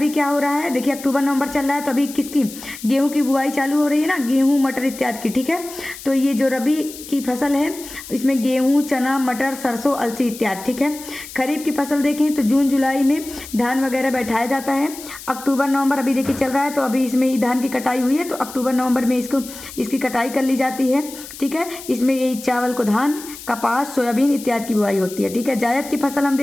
क्या हो रहा है, देखिए अक्टूबर नवंबर चल रहा है, तो अभी किसकी गेहूं की बुआई चालू हो रही है ना, गेहूं मटर इत्यादि की, ठीक है। तो ये जो रबी की फसल है इसमें गेहूं, चना, मटर, सरसों, अलसी इत्यादि, ठीक है। खरीफ की फसल देखें तो जून जुलाई में धान वगैरह बैठाया जाता है। अक्टूबर नवंबर अभी देखिए चल रहा है, तो अभी इसमें धान की कटाई हुई है, तो अक्टूबर नवंबर में इसकी कटाई कर ली जाती है, ठीक है। इसमें यही चावल को धान, कपास, सोयाबीन इत्यादि की बुआई होती है, ठीक है। जायद की फसल हम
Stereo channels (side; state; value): left; noise; hiss, 14 dB below the sound